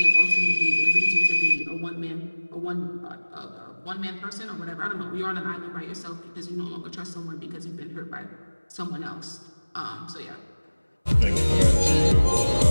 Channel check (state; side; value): inverted; both; correlation -1.00